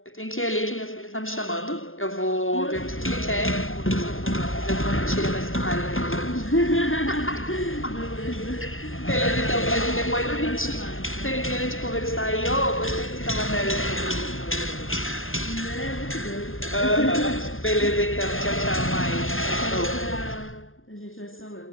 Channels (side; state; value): right; late; 0.60 ms